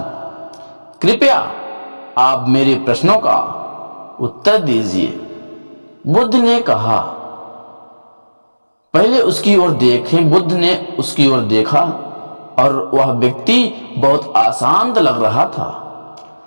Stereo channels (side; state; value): both; inverted; correlation -1.00